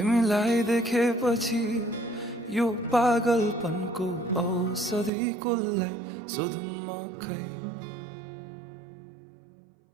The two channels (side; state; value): left; drops out; at 5.1 s